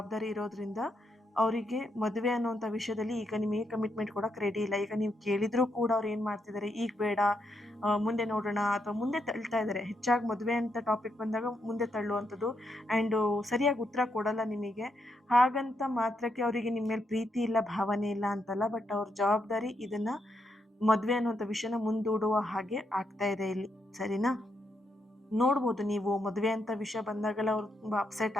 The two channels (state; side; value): normal; both; correlation 0.80